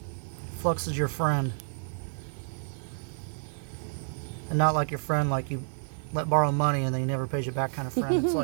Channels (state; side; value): silent; left; digital silence